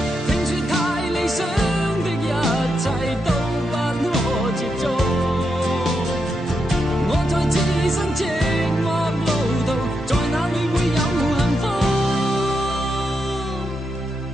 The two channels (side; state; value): both; normal; correlation 0.84